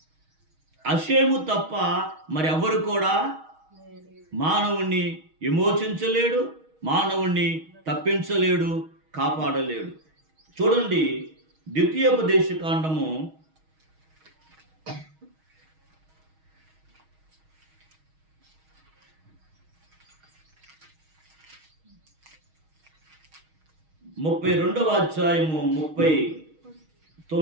అషేము తప్ప మరి ఎవరు కూడా మానవుణ్ణి విమోచించలేడు, మానవుణ్ణి తప్పించలేడు, కాపాడలేడు. చూడండి, ద్వితీయోపదేశకాండము 32వ అధ్యాయము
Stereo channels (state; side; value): late; left; 6.3 ms